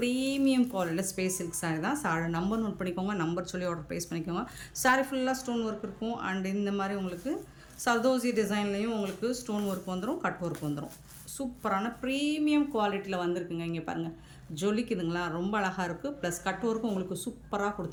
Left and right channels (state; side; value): identical; both; correlation 1.00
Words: குவாலிட்டியில் ஸ்பேஸ் சில்க் சாரீ தான். சாரி நம்பர் நோட் பண்ணிக்கோங்க. நம்பர் சொல்லி ஆர்டர் ப்ளேஸ் பண்ணிக்கோங்க. சாரீ ஃபுல்லாக ஸ்டோன் ஒர்க் இருக்கும். அண்ட் இந்த மாதிரி உங்களுக்கு சர்தோசி டிசைன்லேயும் உங்களுக்கு ஸ்டோன் ஒர்க் வந்துடும், கட் ஒர்க் வந்துடும். சூப்பரான ப்ரீமியம் குவாலிட்டியில் வந்திருக்குங்க. இங்கே பாருங்கள், ஜொலிக்குதுங்களா, ரொம்ப அழகாக இருக்குது. ப்ளஸ் கட் ஒர்க்கும் உங்களுக்கு சூப்பராக